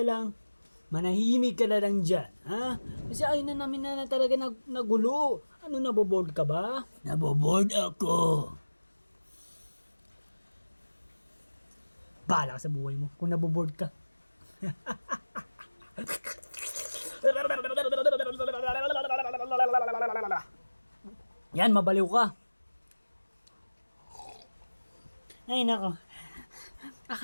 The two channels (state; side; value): inverted; both; correlation -1.00